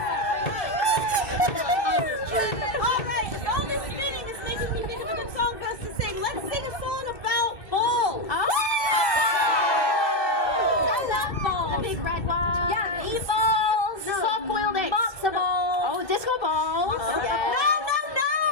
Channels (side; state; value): right; late; 2.6 ms